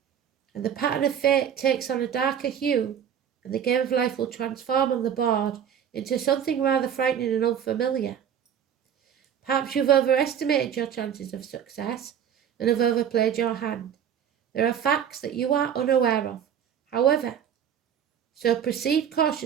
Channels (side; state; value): left; quieter; 8.8 dB